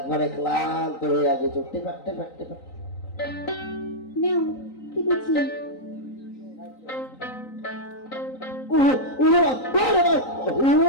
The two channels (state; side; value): late; right; 3.9 ms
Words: ক্লান্ত হয়ে গেছে টেপে নাও কি বলছি ওরে